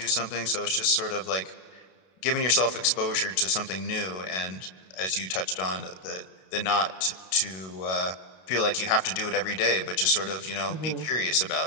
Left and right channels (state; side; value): late; right; 32 ms